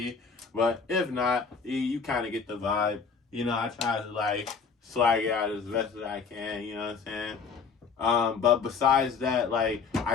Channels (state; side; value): quieter; right; 5.5 dB